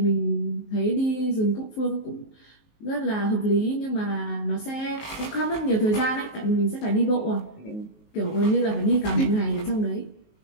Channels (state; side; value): late; right; 19 ms